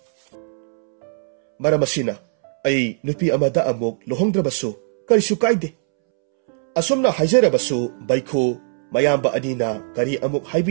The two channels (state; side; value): silent; left; 66 dB below the other